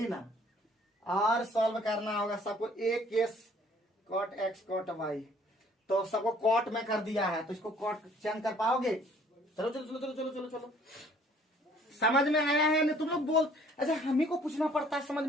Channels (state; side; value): normal; both; correlation 0.58